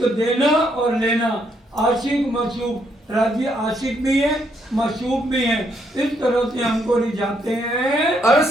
देना और लेना, आशिक मशूक। राजी आशिक भी है, मशूक भी है, इस तरह से हमको रिझाते हैं।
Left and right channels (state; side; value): normal; both; correlation 0.74